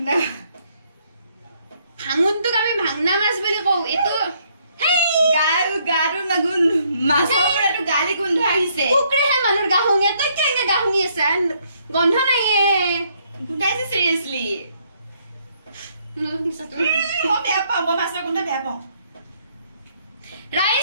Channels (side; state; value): both; inverted; correlation -0.70